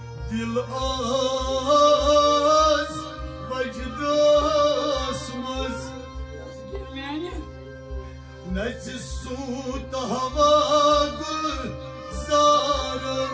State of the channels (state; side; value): identical; both; correlation 1.00